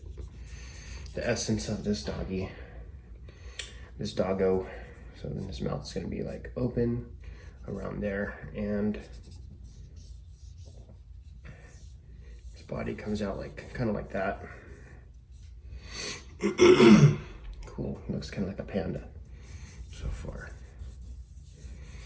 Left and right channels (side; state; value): both; identical; correlation 1.00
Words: the essence of this doggy, this doggo. So then his mouth is going to be like open around there, and his body comes out like kind of like that. Cool, looks kind of like a panda so far.